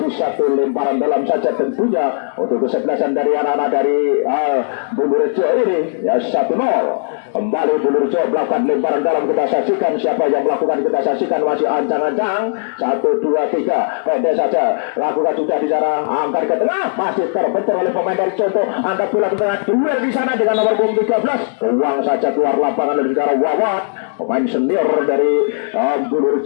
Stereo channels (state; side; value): silent; right; digital silence